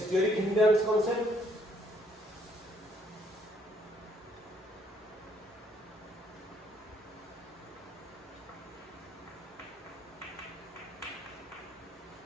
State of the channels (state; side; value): normal; both; correlation 0.67